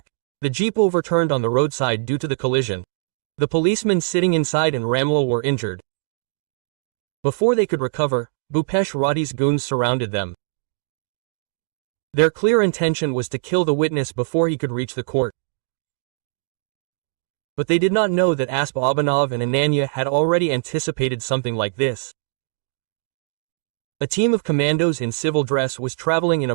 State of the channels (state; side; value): silent; left; 61 dB below the other